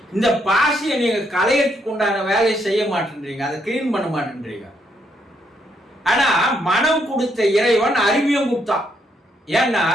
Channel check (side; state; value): both; normal; correlation 0.75